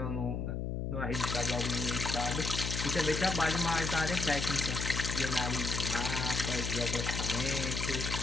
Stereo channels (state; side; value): noise; left; hum, 2 dB below the sound